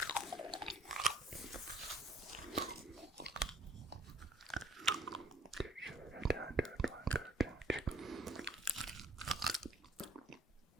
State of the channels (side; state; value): both; normal; correlation 0.56